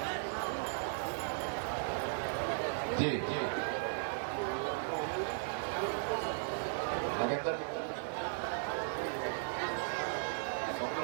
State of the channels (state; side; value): silent; left; digital silence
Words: जी जी नगेंद्र